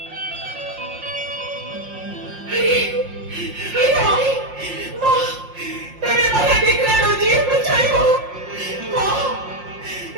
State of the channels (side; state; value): left; late; 5.6 ms